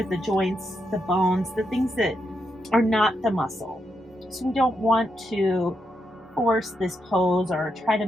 the joints, the bones, the things that are not the muscle. So we don't want to force this pose or try to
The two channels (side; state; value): both; normal; correlation 0.82